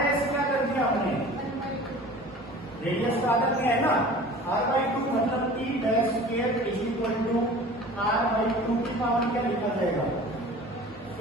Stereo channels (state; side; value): normal; both; correlation 0.42